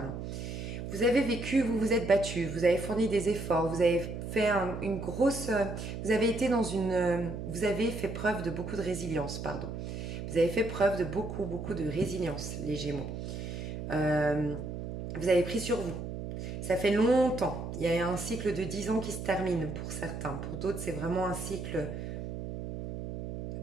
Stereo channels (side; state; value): right; noise; hum, 6 dB below the sound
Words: Vous avez vécu, vous vous êtes battu, vous avez fourni des efforts, vous avez fait une grosse... Vous avez été dans une... Vous avez fait preuve de beaucoup de résilience, pardon. Vous avez fait preuve de beaucoup, beaucoup de résilience, les Gémeaux. Vous avez pris sur vous. Ça fait longtemps. Il y a un cycle de 10 ans qui se termine pour certains. Pour d'autres, c'est vraiment un cycle